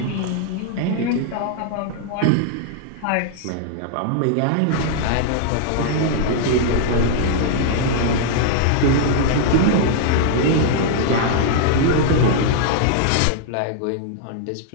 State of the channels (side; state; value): both; different; correlation 0.00